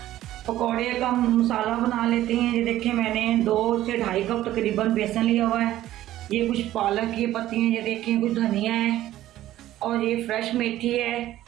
पकौड़े का मसाला बना लेते हैं। ये देखिए मैंने 2 से 2.5 कप तकरीबन बेसन लिया हुआ है। ये कुछ पालक की पत्ती हैं, ये देखिए कुछ धनिया है, और ये फ्रेश मेथी है।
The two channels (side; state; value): left; quieter; 14.0 dB